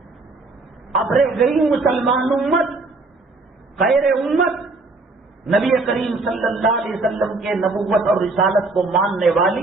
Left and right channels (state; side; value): quieter; left; 3.4 dB